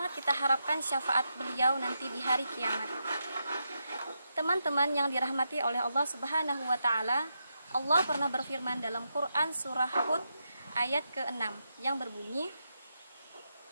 kita harapkan syafaat beliau nanti di hari kiamat. Teman-teman yang dirahmati oleh Allah Subhanahu wa Ta'ala, Allah pernah berfirman dalam Quran surah Hud ayat ke-6 yang berbunyi,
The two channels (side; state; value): both; inverted; correlation -0.85